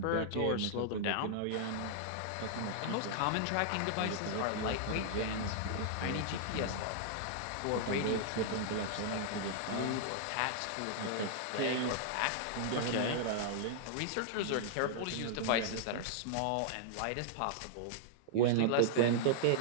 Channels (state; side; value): different; both; correlation -0.01